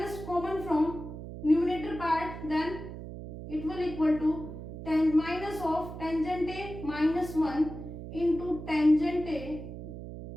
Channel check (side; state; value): right; noise; hum, 10 dB below the sound